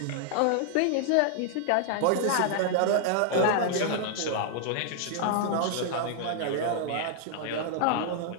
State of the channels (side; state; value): both; different; correlation -0.01